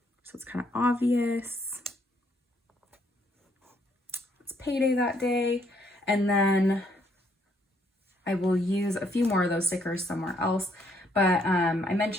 so it's kind of obvious it's payday that day. And then I will use a few more of those stickers somewhere else. But I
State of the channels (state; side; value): normal; both; correlation 0.70